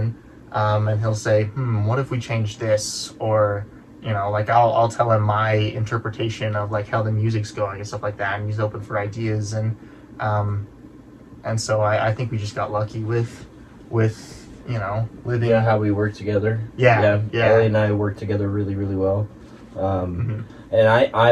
he'll say, what if we change this? Or, like I'll tell him my interpretation of like how the music's going and stuff like that, and he's open for ideas, and so I think we just got lucky with living. Yeah, how we work together. Yeah. Ellie and I work together really, really well. And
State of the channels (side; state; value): both; identical; correlation 1.00